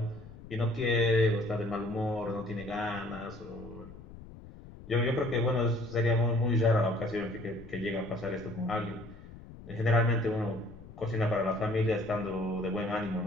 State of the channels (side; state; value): left; noise; rumble, 16 dB below the sound